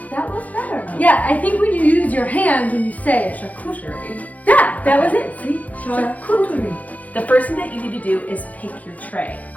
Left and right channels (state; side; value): late; right; 0.075 ms